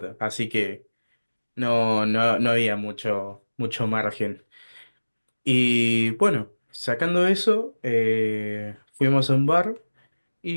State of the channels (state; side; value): inverted; both; correlation -1.00